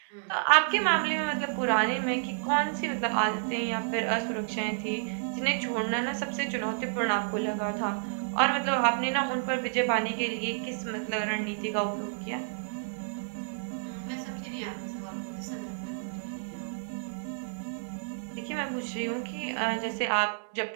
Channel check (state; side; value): silent; left; digital silence